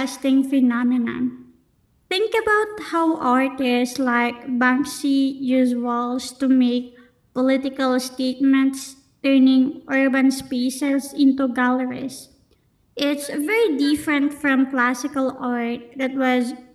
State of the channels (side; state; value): both; identical; correlation 1.00